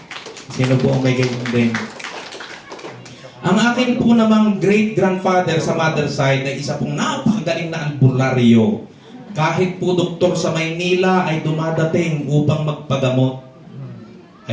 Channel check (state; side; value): identical; both; correlation 1.00